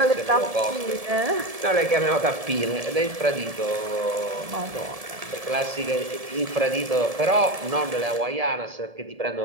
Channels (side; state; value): left; late; 1.7 ms